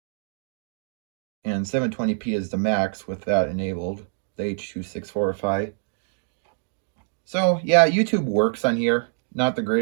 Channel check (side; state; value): left; silent; 62 dB below the other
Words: And 720p is the max with that enabled, the H.264. So, yeah, YouTube works on here. Not the